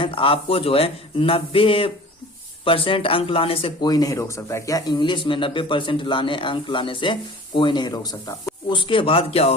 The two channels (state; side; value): normal; both; correlation 0.42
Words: तो आपको जो है 90% अंक लाने से कोई नहीं रोक सकता। क्या इंग्लिश में 90% अंक लाने से कोई नहीं रोक सकता। उसके बाद क्या